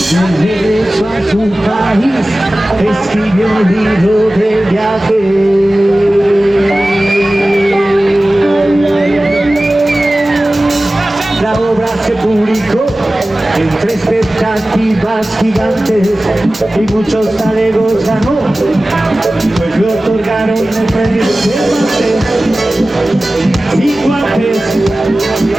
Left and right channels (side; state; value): both; normal; correlation 0.97